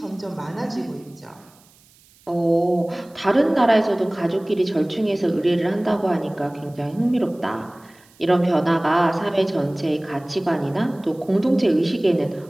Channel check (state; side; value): noise; right; hiss, 29 dB below the sound